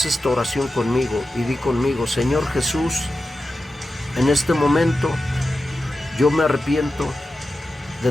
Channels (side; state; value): both; normal; correlation 0.92